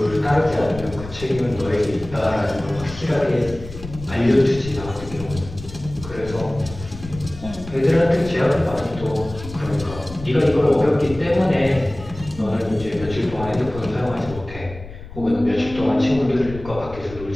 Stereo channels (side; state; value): left; noise; rumble, 13 dB below the sound